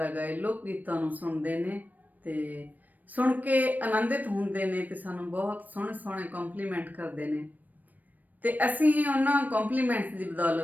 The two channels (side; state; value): left; late; 0.084 ms